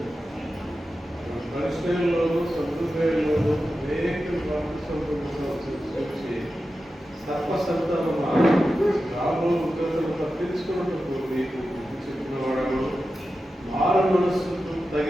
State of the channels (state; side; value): normal; both; correlation 0.92